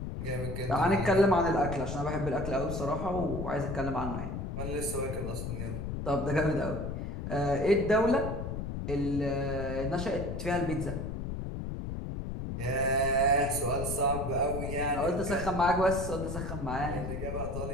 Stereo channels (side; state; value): left; noise; rumble, 5 dB below the sound